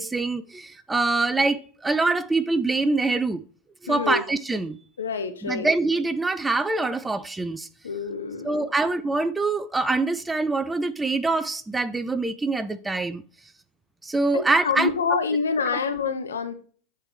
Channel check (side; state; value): both; normal; correlation 0.63